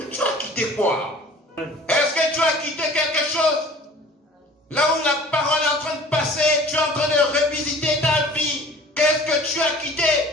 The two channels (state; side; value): normal; both; correlation 0.47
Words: tu as quitté quoi? Est-ce que tu as quitté quelque chose? Là où la parole est en train de passer, tu es en train de revisiter ta vie. Qu'est-ce que tu as quitté?